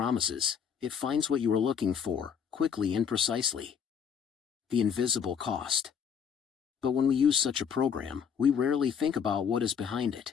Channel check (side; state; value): right; quieter; 7.3 dB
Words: It finds what you are looking for, quickly and precisely. The invisible cost. But when we use such a program, we rarely think about what is behind it.